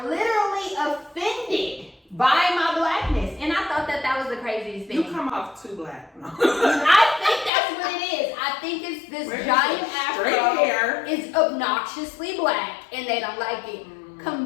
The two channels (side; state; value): right; drops out; at 7.5 s